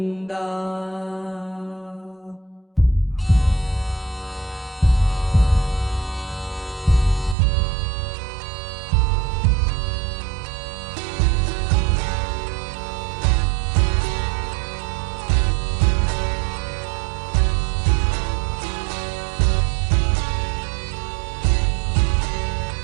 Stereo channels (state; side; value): drops out; left; at 7.4 s